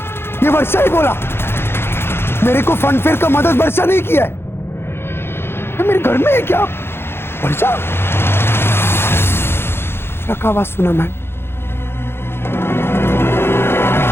ये वर्षा ही बोला। मेरे को फनफेयर का मदद वर्षा नहीं किया है। ये मेरे घर में है क्या? वर्षा का आवाज सुना मैन।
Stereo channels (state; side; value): late; right; 0.11 ms